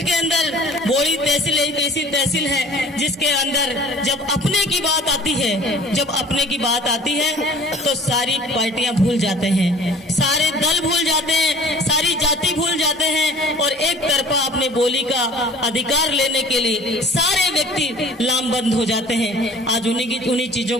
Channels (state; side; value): normal; both; correlation 0.48